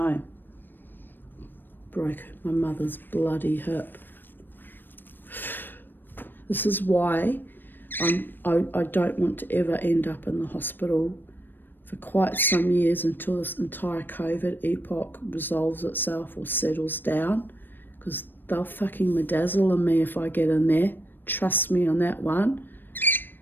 broke my mother's bloody hip. This is why I don't want to ever end up in the hospital for quite some years until this entire COVID epoch resolves itself or settles down, because they'll fucking bedazzle on me if I get in there. Trust me on that one.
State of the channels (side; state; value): right; late; 0.094 ms